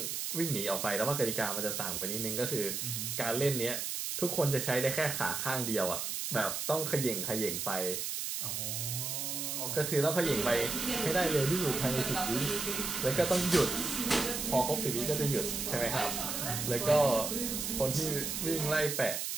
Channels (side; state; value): right; noise; hiss, 3 dB below the sound